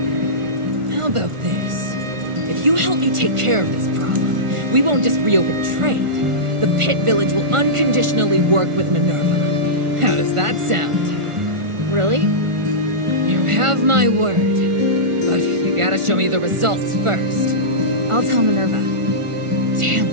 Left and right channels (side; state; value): left; late; 1.4 ms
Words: How about this? If you help me take care of this problem, we won't just reopen trade. The Pit Village will unconditionally work with Minerva. How does that sound? Really? You have my word. But you gotta show me the results first. I'll tell Minerva. Damn